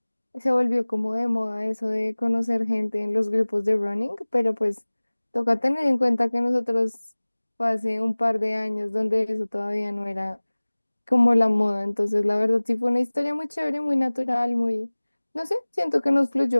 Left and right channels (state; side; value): inverted; both; correlation -1.00